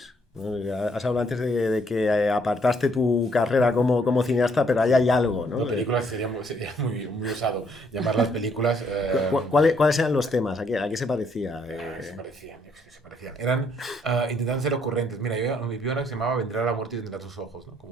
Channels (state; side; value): normal; both; correlation 0.69